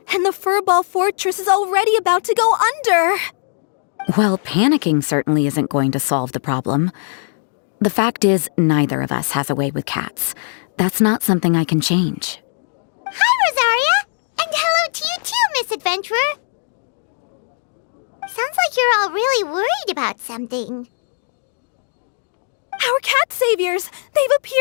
and the Furball Fortress is already about to go under. Well, panicking certainly isn't going to solve the problem. The fact is, neither of us has a way with cats. That's not something I can change. Hi, Rosaria! And hello to you too, Miss Adventurer. Sounds like you're all really worried about something. Our cat saviors! They've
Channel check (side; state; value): right; silent; digital silence